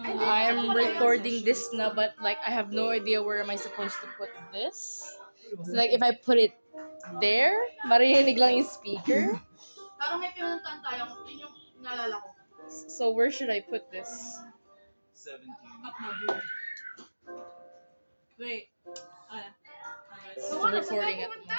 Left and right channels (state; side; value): inverted; both; correlation -1.00